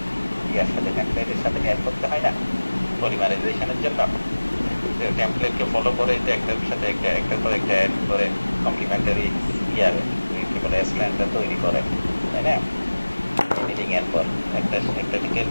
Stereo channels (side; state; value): both; inverted; correlation -1.00